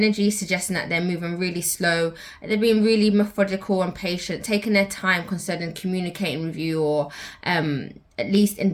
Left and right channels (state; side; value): identical; both; correlation 1.00